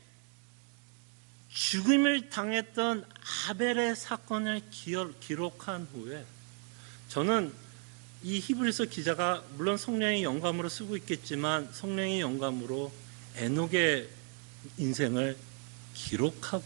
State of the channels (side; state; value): left; quieter; 38.3 dB